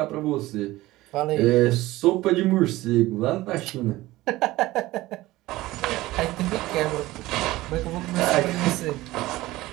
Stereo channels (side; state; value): left; quieter; 17.9 dB